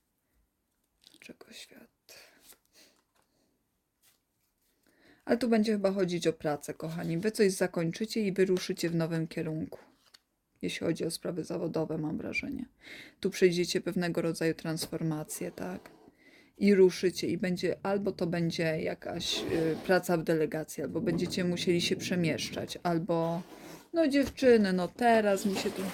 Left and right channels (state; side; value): identical; both; correlation 1.00